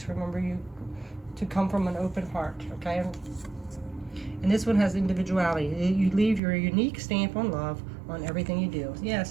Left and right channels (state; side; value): drops out; left; at 6.4 s